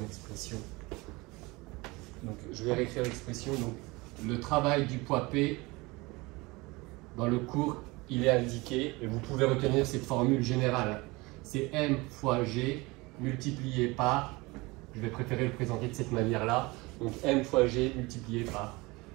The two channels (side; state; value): left; quieter; 23.6 dB